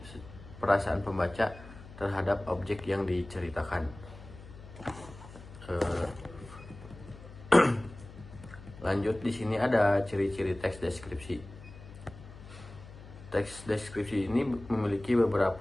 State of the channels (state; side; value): noise; left; hum, 17 dB below the sound